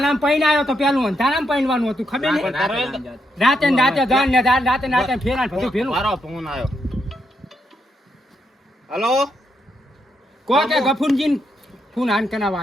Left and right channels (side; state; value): both; normal; correlation 0.79